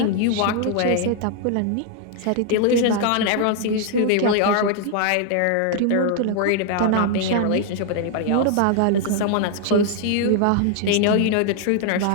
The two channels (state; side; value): different; both; correlation 0.00